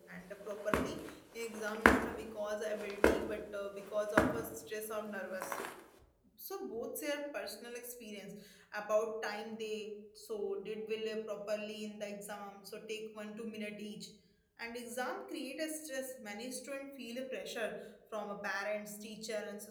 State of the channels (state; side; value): identical; both; correlation 1.00